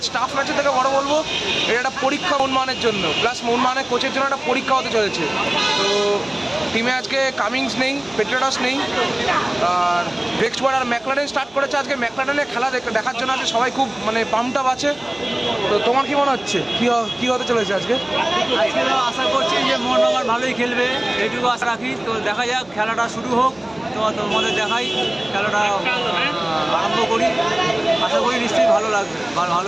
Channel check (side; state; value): right; noise; hum, 27 dB below the sound